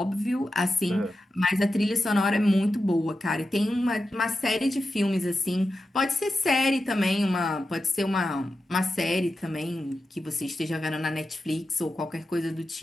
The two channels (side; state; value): both; normal; correlation 0.91